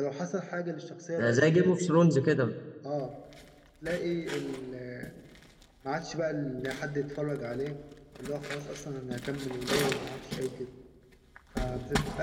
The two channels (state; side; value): identical; both; correlation 1.00